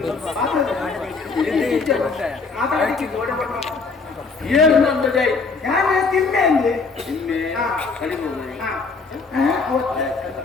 ಏನು ನಂದದೆ ಯಾರು ತಿನ್ನೆ ಅಂದ್ರೆ ನಿನ್ನೆ ಕಡಿಮೆ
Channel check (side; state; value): right; quieter; 4.4 dB